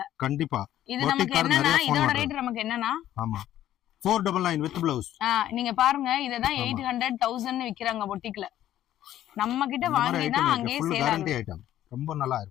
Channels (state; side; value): quieter; right; 12.5 dB